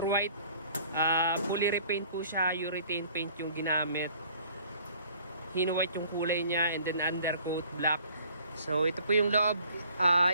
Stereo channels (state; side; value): inverted; both; correlation -0.55